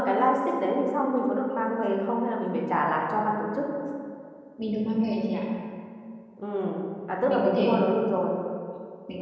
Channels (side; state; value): both; identical; correlation 1.00